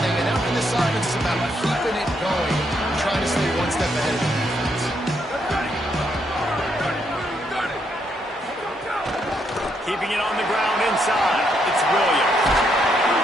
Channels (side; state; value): both; normal; correlation 0.76